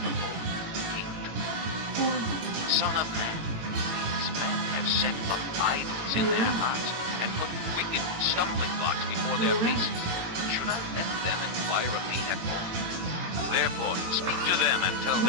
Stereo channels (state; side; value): late; left; 18 ms